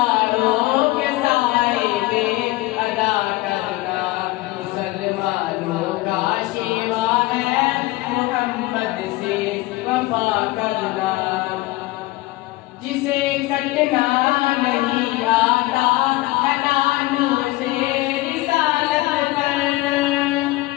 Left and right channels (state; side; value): quieter; right; 19.6 dB